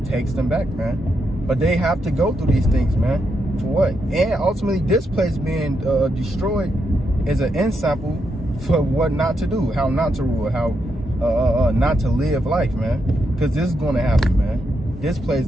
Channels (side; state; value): both; normal; correlation 0.82